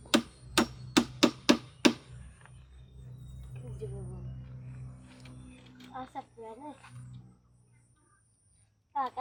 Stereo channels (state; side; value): identical; both; correlation 1.00